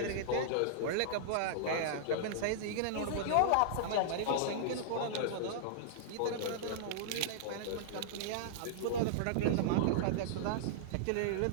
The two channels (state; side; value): different; both; correlation -0.02